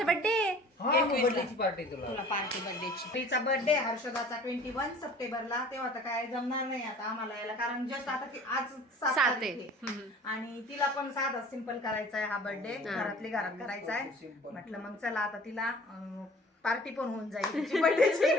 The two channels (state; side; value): normal; both; correlation 0.48